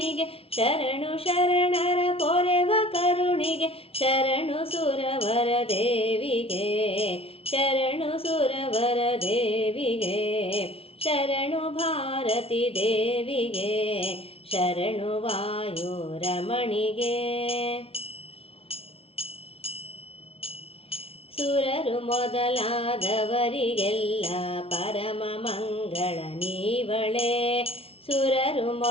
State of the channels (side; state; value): right; late; 0.27 ms